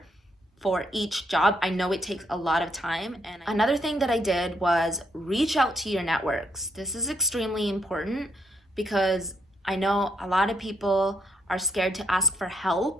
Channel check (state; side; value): normal; both; correlation 0.74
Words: for each job. I know it takes a lot of time. And another thing that I did was reach out to your networks. This is extremely important because I know a lot of people are scared to ask for